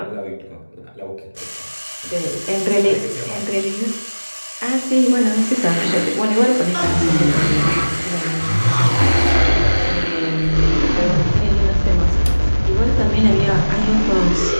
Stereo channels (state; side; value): inverted; both; correlation -1.00